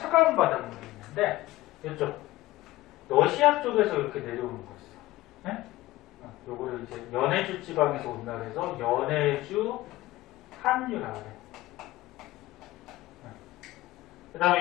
바닷물이 있는데 이쪽 러시아 쪽에서 이렇게 내려오는 거 있어. 네? 요거를 이제 연해주 지방에서 온다 그래서 연해주 한류라고 그래. 그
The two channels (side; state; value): right; quieter; 17.5 dB